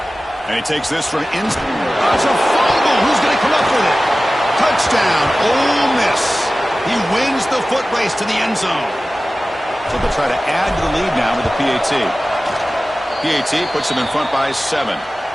And he takes this from inside. It's a fumble. Who's going to come up with it? Touchdown, Ole Miss. He wins the foot race to the end zone. So they'll try to add to the lead now with the PAT. PAT puts them in front by 7.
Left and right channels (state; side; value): normal; both; correlation 0.96